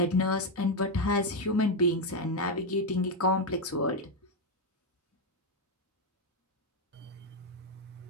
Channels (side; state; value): both; normal; correlation 0.05